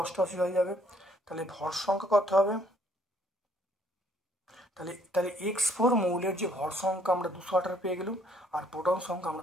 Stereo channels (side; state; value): both; normal; correlation 0.65